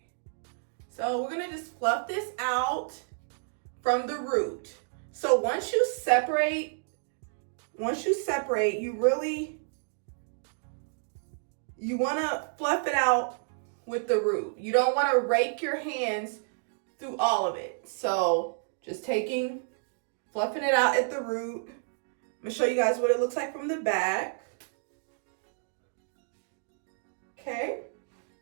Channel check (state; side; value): silent; left; digital silence